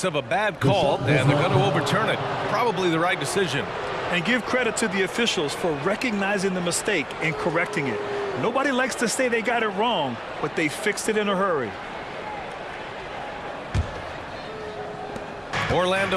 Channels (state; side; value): identical; both; correlation 1.00